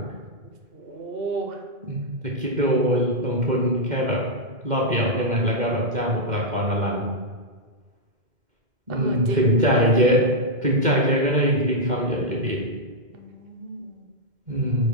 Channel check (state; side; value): late; left; 2.1 ms